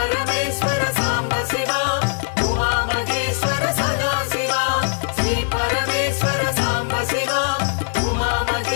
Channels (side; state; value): right; silent; 65 dB below the other